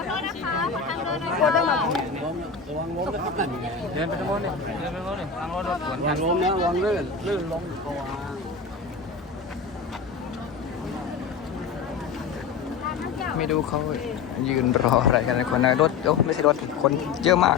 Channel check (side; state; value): right; quieter; 5.6 dB